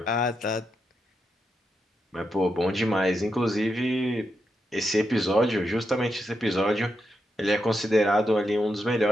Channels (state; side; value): normal; both; correlation 0.85